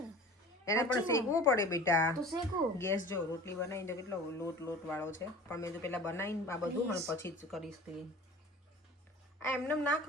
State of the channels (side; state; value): both; normal; correlation 0.41